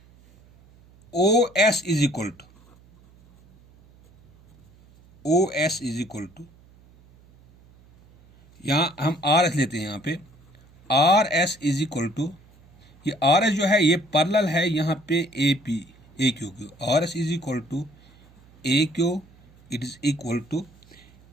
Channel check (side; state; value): right; noise; hum, 27 dB below the sound